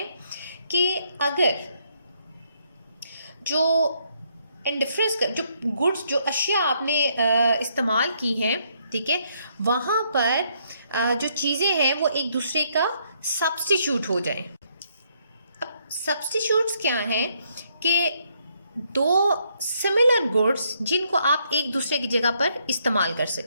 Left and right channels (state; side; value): inverted; both; correlation -0.72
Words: कि अगर जो इंडिफरेंस कर्व, जो गुड्स, जो अशिया आपने इस्तेमाल की हैं, ठीक है, वहाँ पर जो चीज़ें हैं वो एक दूसरे का सब्स्टिट्यूट हो जाए। अब सब्स्टिट्यूट्स क्या हैं कि दो सिमिलर गुड्स जिनको आप एक दूसरे की जगह पर इस्तेमाल कर